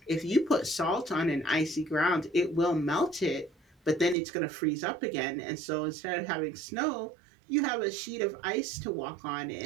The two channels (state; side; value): drops out; left; at 4.2 s